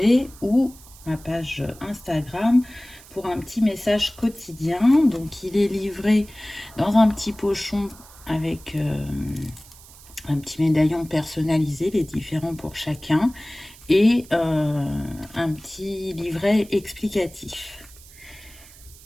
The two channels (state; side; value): noise; right; hiss, 21 dB below the sound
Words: ou ma page Instagram pour un petit message quotidien. Donc il est livré dans un petit pochon avec un petit médaillon personnalisé, les différents pour chacun, et un petit livret explicatif.